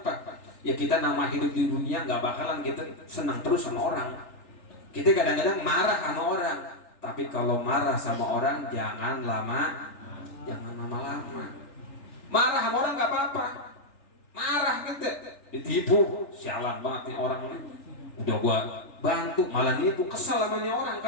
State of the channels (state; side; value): late; right; 3.4 ms